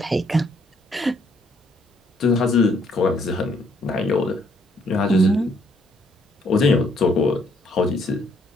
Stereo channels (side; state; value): both; normal; correlation 0.68